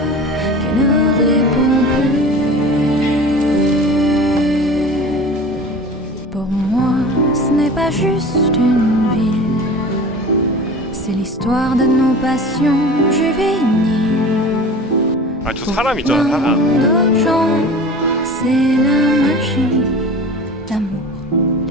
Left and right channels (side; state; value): both; normal; correlation 0.38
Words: qui ne réponds plus. Pour moi, ce n'est pas juste une ville, c'est l'histoire de nos passions juvéniles. 아, 저 사람 있잖아, 사람. D'autres gens, c'est la magie, l'amour,